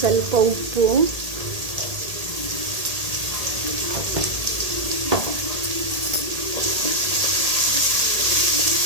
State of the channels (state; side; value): late; left; 1.8 ms